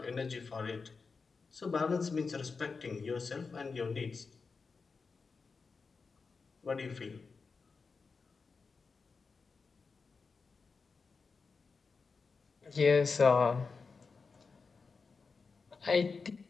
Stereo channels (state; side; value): quieter; right; 4.7 dB